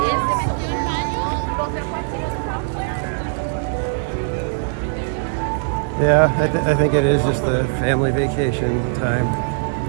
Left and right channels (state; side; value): silent; left; digital silence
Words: Yeah, I think it is just the family vacation time.